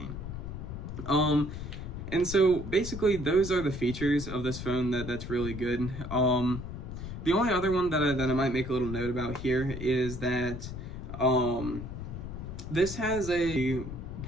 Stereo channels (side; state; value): left; noise; rumble, 8 dB below the sound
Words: And so basically those are the features of this phone that's really good. The only other one that I might make a little note about here is that this has a